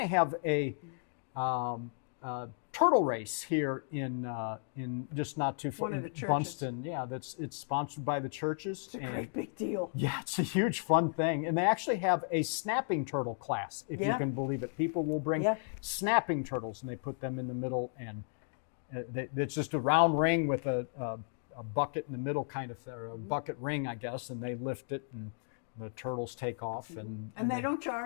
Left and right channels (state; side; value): silent; right; digital silence